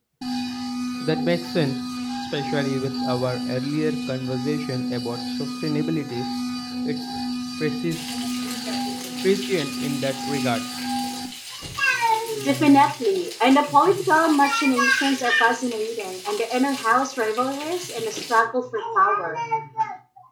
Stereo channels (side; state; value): both; identical; correlation 1.00